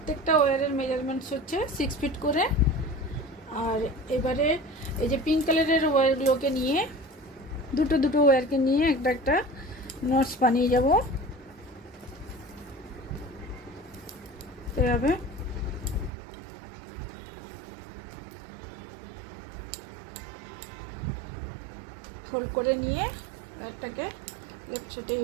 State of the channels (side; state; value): left; drops out; at 16.1 s